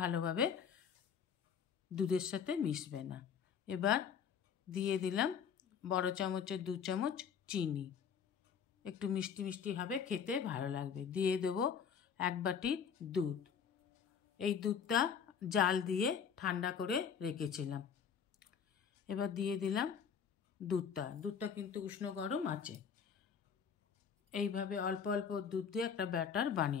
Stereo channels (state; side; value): quieter; right; 7.2 dB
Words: দুধের সাথে মিশবে না। এবার দিয়ে দিলাম বড় চামচের 2 চামচ চিনি, একটু মিষ্টি মিষ্টি হবে, খেতে ভালো লাগবে। দিয়ে দেবো 1 বাটি দুধ। এই দুধটা জাল দিয়ে ঠান্ডা করে রেখেছিলাম। এবার দিয়ে দিলাম দুধটা কিন্তু উষ্ণ গরম আছে। এইভাবে অল্প অল্প দুধ দিয়ে একটা ব্যাটার